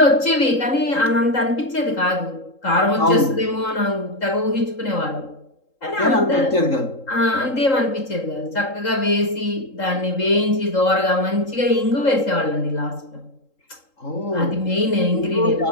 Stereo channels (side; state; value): right; late; 3.8 ms